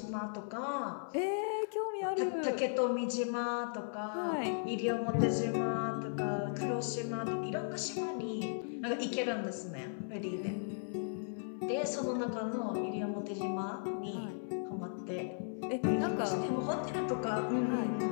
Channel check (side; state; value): right; silent; 54 dB below the other